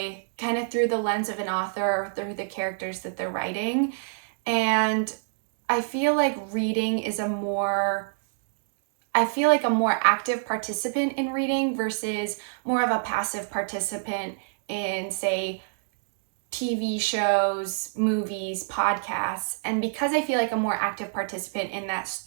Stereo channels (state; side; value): silent; left; digital silence